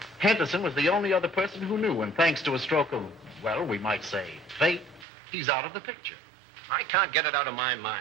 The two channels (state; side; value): drops out; left; at 5.1 s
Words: Henderson was the only other person who knew, and thanks to a stroke of, well, we might say, fate, he's out of the picture. I can't get it out of my